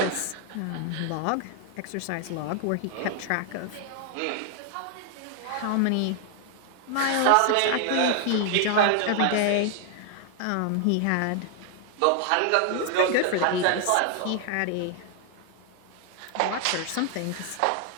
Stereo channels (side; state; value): both; different; correlation 0.00